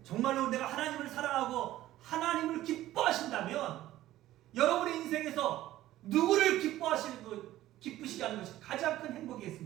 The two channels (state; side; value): quieter; left; 14.7 dB